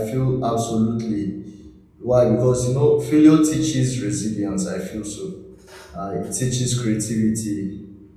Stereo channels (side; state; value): both; identical; correlation 1.00